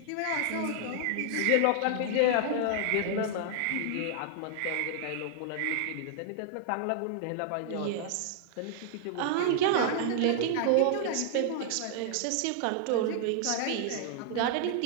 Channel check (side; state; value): both; different; correlation -0.01